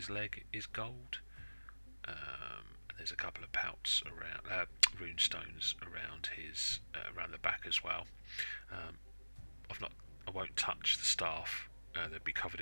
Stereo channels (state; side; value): inverted; both; correlation -1.00